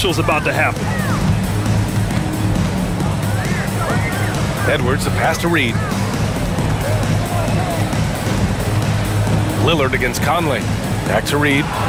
is about to happen. Edwards, the pass to Reed. Lillard against Conley. Back to Reed.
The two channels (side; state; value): both; identical; correlation 1.00